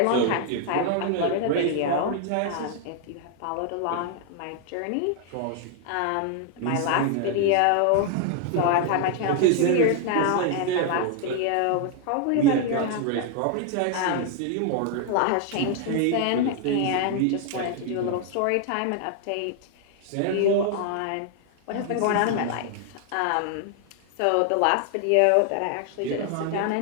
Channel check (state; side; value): different; both; correlation 0.00